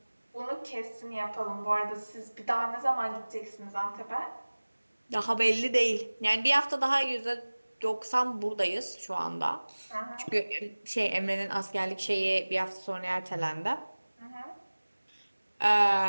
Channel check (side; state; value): both; inverted; correlation -1.00